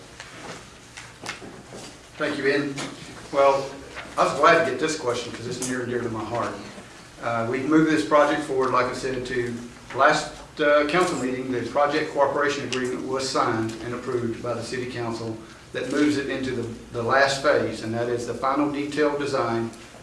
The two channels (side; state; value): both; identical; correlation 1.00